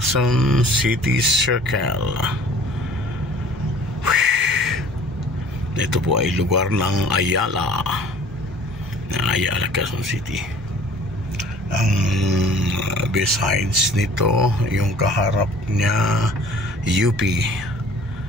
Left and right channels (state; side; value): noise; right; hum, 21 dB below the sound